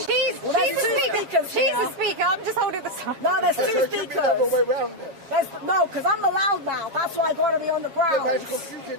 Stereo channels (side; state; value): left; late; 7.3 ms